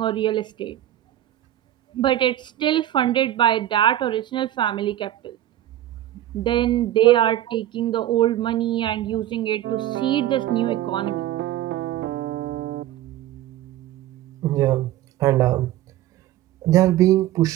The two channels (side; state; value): left; quieter; 13.0 dB